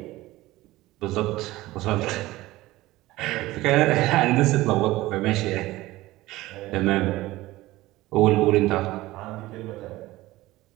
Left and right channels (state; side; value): quieter; left; 18.0 dB